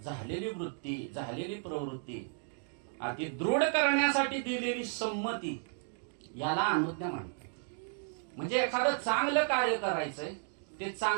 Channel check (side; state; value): left; silent; 55 dB below the other